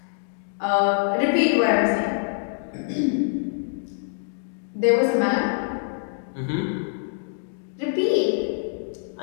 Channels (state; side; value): silent; right; digital silence